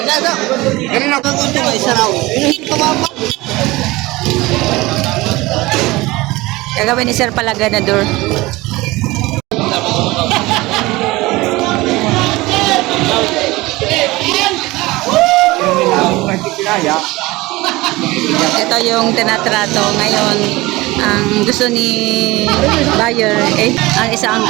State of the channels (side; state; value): left; quieter; 20.6 dB